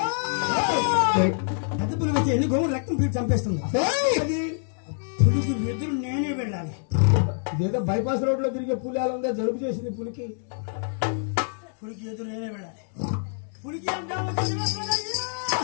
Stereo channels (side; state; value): right; silent; digital silence